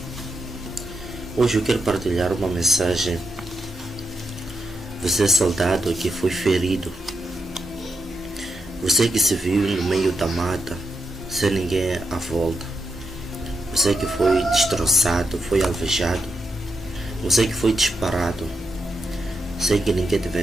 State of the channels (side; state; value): both; normal; correlation 0.85